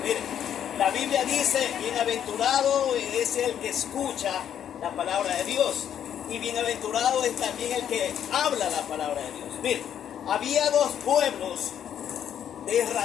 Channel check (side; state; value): right; quieter; 9.5 dB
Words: Mire, la Biblia dice: bienaventurado es el que escucha la palabra de Dios, y bienaventurado es también el que habla la palabra de Dios. Mire, había dos pueblos de